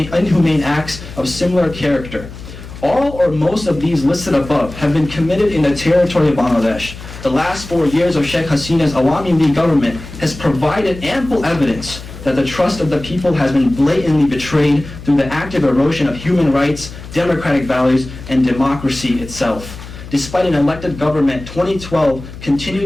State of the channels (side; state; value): left; noise; hum, 14 dB below the sound